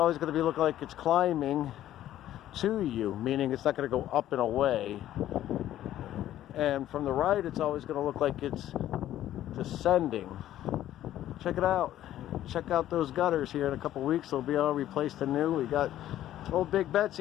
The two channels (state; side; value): quieter; right; 12.8 dB